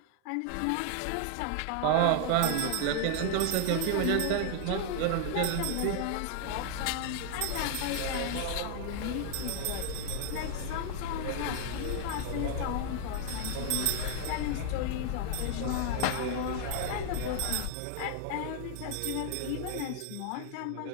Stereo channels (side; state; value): both; different; correlation 0.00